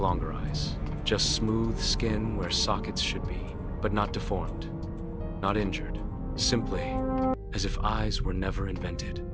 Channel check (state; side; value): identical; both; correlation 1.00